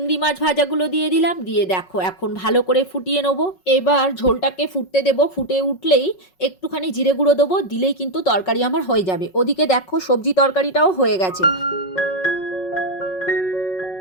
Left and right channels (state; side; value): late; right; 5.4 ms